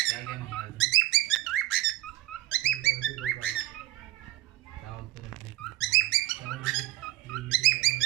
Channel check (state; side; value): quieter; left; 16.8 dB